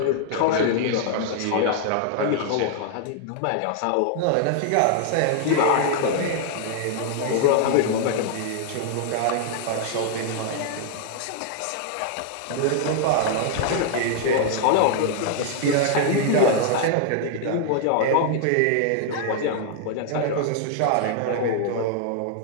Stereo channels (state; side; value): different; both; correlation -0.01